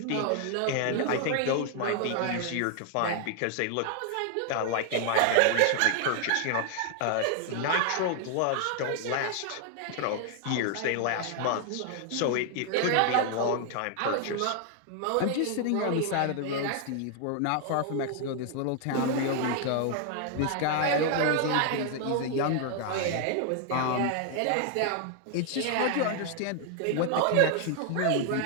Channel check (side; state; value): both; different; correlation 0.00